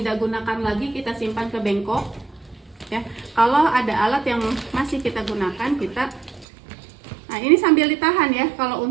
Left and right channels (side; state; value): left; drops out; at 6.5 s